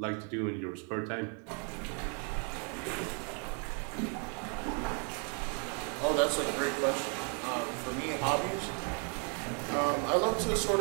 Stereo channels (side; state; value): left; quieter; 39.3 dB